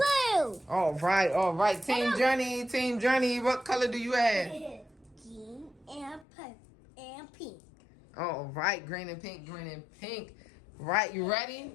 All right, all right. Team Journey, what color do you have? Green and pink. All right, green and pink. Right, you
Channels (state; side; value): drops out; right; at 6.2 s